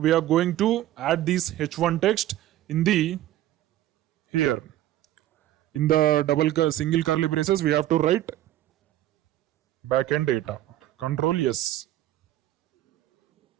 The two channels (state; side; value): quieter; left; 13.7 dB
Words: are going to add this h1 text in the here. In the single curly braces, we have to write backend data. Control yes.